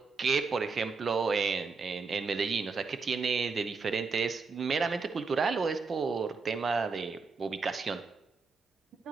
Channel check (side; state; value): left; quieter; 4.6 dB